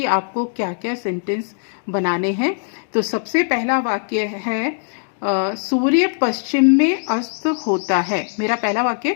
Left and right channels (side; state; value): right; silent; 65 dB below the other